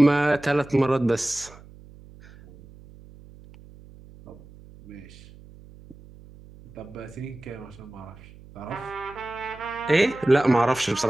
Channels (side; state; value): right; noise; hum, 21 dB below the sound